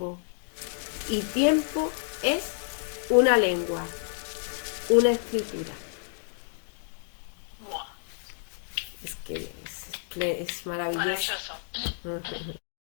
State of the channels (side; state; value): right; silent; digital silence